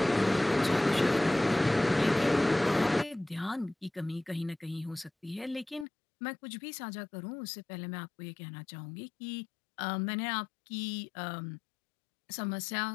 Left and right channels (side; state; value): right; drops out; at 5.9 s